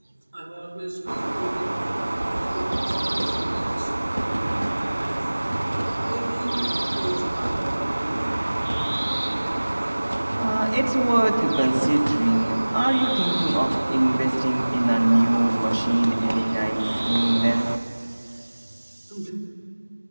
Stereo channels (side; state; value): both; inverted; correlation -1.00